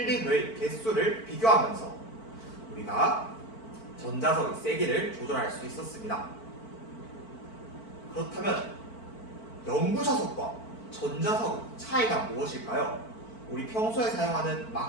개수를 비교하면서 우리가 전자석의 세기를 조절할 수 있었습니다. 그렇다면 영구자석과 전자석의 차이가 무엇일까요? 우리 평소에 사용하는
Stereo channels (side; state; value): right; late; 4.5 ms